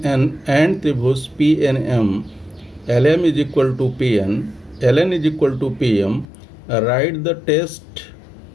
एंड त्रिभुज P N M, L M is equal to P N, L N is equal to P M, write the test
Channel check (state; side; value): drops out; right; at 6.2 s